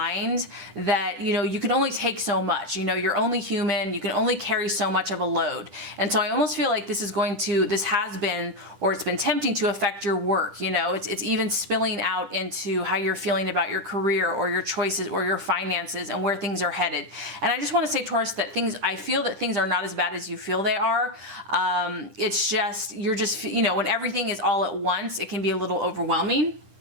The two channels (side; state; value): left; late; 10 ms